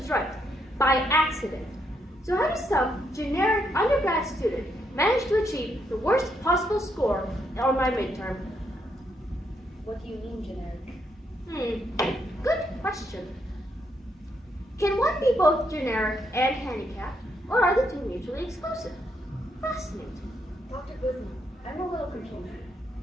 right, by accident. So how does some generic undergrad student manage to achieve the worst possible score on my midterm? What do you mean generic? Good question. Can one be both generic and handicapped, or are the two mutually exclusive? Fascinating. Dr. Guzman, I'm a little confused.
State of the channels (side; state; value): both; normal; correlation 0.77